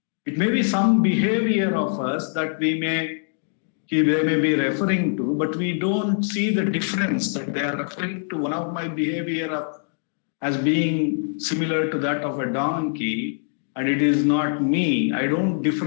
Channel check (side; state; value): right; silent; digital silence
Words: it may be some behavior of us that they may be referring to, but we don't see the difference that they are referring to one of my behavior as being similar to that of a donkey, and it is not me. I don't